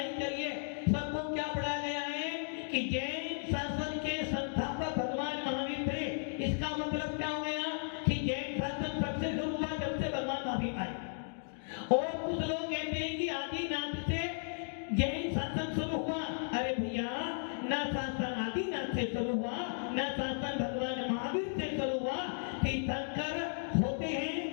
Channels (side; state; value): right; silent; digital silence